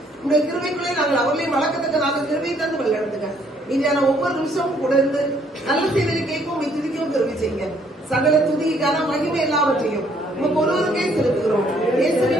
உங்களுடைய கிருபைக்குள்ளே நாங்கள் அவர்களையும் வளர்க்கத்தக்க நாங்கள் கிருபை தந்து வழிநடத்துங்க. மீதியான ஒவ்வொரு நிமிஷமும் கூட இருந்து நல்ல செய்தியை கேட்கவும் துதிக்கவும் கிருபை செய்யுங்க. சகல துதிக்கான மகிமை எல்லாவற்றையும் உங்க ஒருவருக்கே செலுத்துகிறோம்.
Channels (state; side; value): normal; both; correlation 0.66